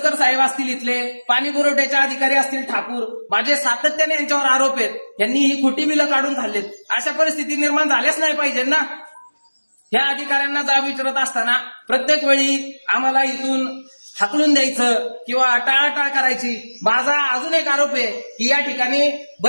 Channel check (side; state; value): both; inverted; correlation -1.00